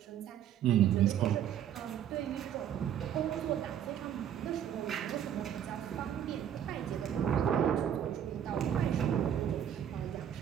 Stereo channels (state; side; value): quieter; left; 9.7 dB